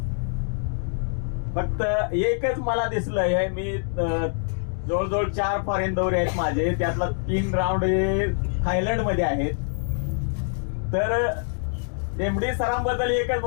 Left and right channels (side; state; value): right; silent; digital silence